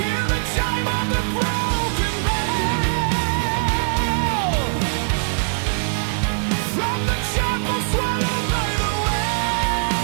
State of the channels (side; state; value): left; silent; 63 dB below the other